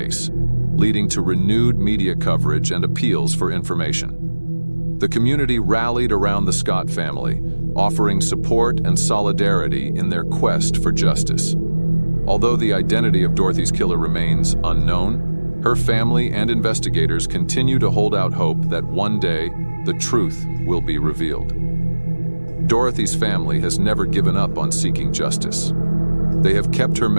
leading to renewed media coverage and appeals for information. The community rallied around the Scott family, offering support and solidarity in their quest for justice. Although the identity of Dorothy's killer remains unknown, her family and investigators continue to hold out hope that one day the truth will be revealed. Dorothy's family has never given up on seeking justice. They have kept her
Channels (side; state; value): both; inverted; correlation -1.00